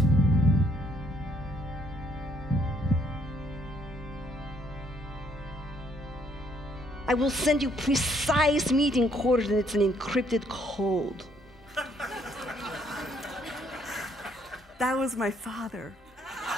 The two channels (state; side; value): normal; both; correlation 0.68